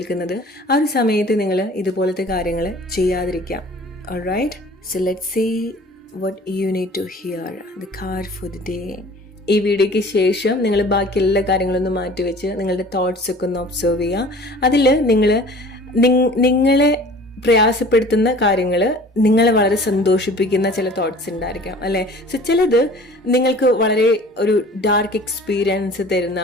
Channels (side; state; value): both; normal; correlation 0.46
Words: ആ ഒരു സമയത്ത് നിങ്ങൾ ഇതുപോലത്തെ കാര്യങ്ങൾ ചെയ്യാതിരിക്കാം. Alright, so let's see what you need to hear. The card for the day. ഈ വീഡിയോയ്ക്ക് ശേഷം നിങ്ങൾ ബാക്കി എല്ലാ കാര്യങ്ങളൊന്നും മാറ്റിവെച്ച് നിങ്ങളുടെ തോട്ട്സ് ഒക്കെ ഒന്ന് ഒബ്സർവ് ചെയ്യുക. അതിൽ നിങ്ങളെ പ്രയാസപ്പെടുത്തുന്ന കാര്യങ്ങൾ, നിങ്ങളെ വളരെ സന്തോഷിപ്പിക്കുന്ന ചില തോട്ട്സ് ഉണ്ടായിരിക്കാം അല്ലേ. സോ ചിലത് നിങ്ങൾക്ക് വളരെ ഒരു ഡാർക്ക് എക്സ്പീരിയൻസ് തരുന്ന